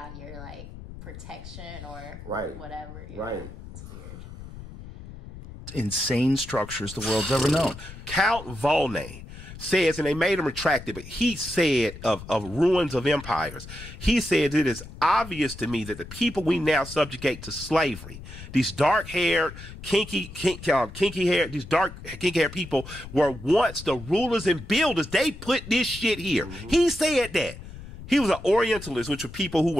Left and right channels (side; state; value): left; noise; rumble, 14 dB below the sound